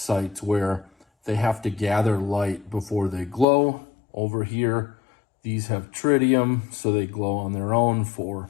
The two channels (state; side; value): drops out; right; at 3.5 s